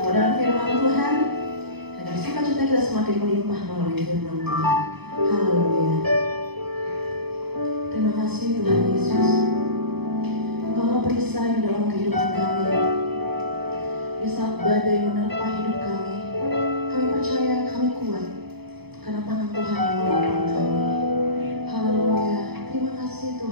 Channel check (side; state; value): left; late; 0.98 ms